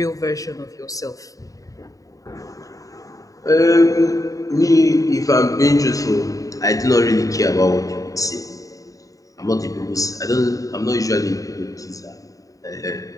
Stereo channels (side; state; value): right; late; 0.16 ms